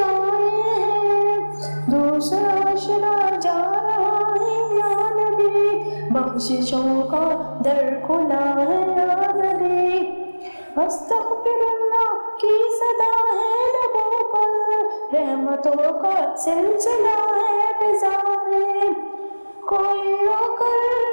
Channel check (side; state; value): both; inverted; correlation -1.00